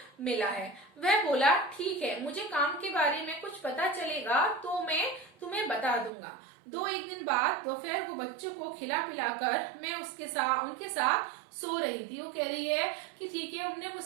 मिला है। वह बोला ठीक है, मुझे काम के बारे में कुछ पता चलेगा तो मैं तुम्हें बता दूंगा। 2-1 दिन बाद दोपहर को बच्चों को खिला पिलाकर मैं उनके साथ सो रही थी। वो कह रही है कि ठीक है, उन्होंने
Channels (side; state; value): left; drops out; at 6.1 s